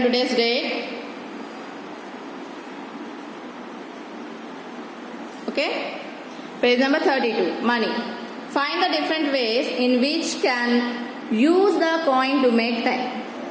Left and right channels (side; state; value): both; identical; correlation 1.00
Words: today's date. Okay? Page number 32. Money. Find the different ways in which can use the coin to make 10.